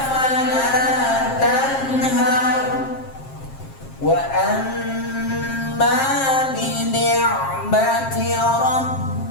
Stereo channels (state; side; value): late; right; 7.5 ms